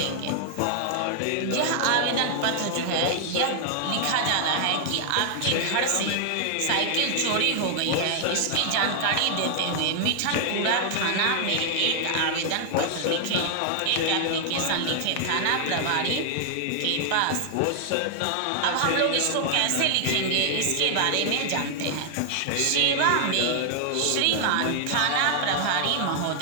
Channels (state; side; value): different; both; correlation 0.00